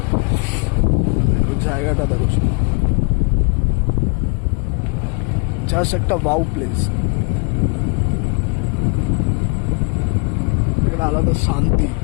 দেখো জায়গাটা, দেখো জাস্ট একটা ওয়াও প্লেস, একটা আলাদা শান্তি,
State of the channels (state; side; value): quieter; right; 34.3 dB